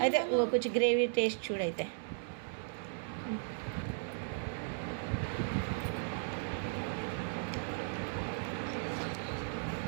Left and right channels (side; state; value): left; silent; 54 dB below the other